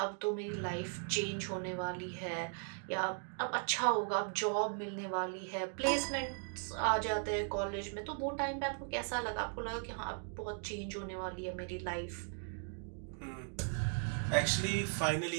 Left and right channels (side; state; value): left; silent; 53 dB below the other